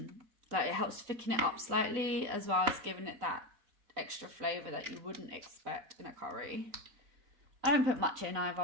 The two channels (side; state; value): left; late; 3.9 ms